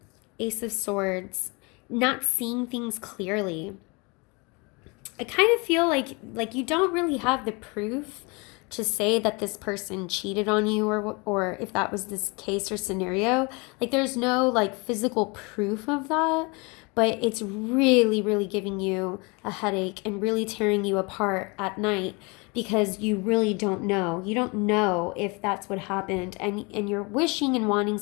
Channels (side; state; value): right; quieter; 28.9 dB